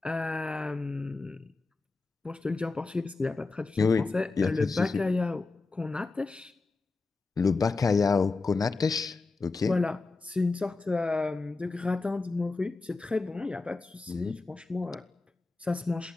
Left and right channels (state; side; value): quieter; right; 3.7 dB